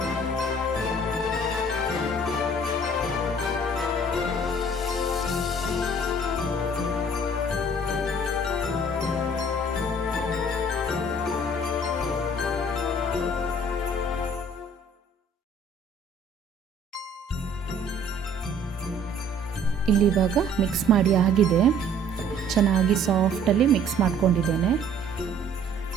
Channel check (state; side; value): normal; both; correlation 0.55